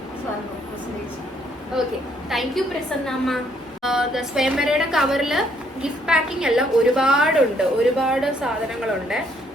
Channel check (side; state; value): both; normal; correlation 0.68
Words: പ്രസന്നേച്ചി. ഓക്കെ, താങ്ക് യു പ്രസന്നമ്മ. സ്വയംവരയുടെ കവറില് ഗിഫ്റ്റ് പാക്കിംഗ് എല്ലാം ഒരുപാടുണ്ട്, ഒരുപാട് സാധനങ്ങളുണ്ട്.